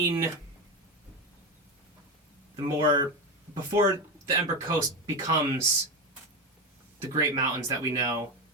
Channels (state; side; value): normal; both; correlation 0.15